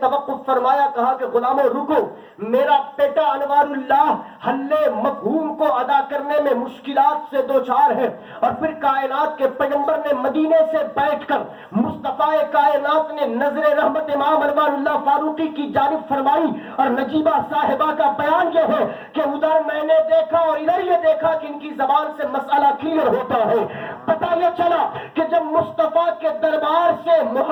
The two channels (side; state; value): both; identical; correlation 1.00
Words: فرمایا, کہا کہ غلاموں رکو, میرا بیٹا انوار اللہ حل مفہوم کو ادا کرنے میں مشکلات سے دوچار ہے. اور پھر کائنات کے پیغمبر نے مدینے سے بیٹھ کر مصطفیٰ کائنات نے نظر رحمت امام انوار اللہ فاروقی کی جانب فرمائی, اور نجیبہ صاحبہ کا بیان یہ ہے کہ ادھر میں نے دیکھا اور ادھر یہ دیکھا کہ ان کی زبان سے مسئلہ کلیئر ہوتا ہے. پتہ یہ چلا کہ جب مصطفیٰ کے دربار سے